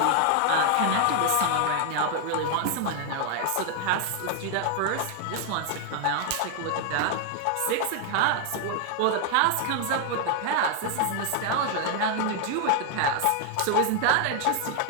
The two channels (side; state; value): both; different; correlation 0.00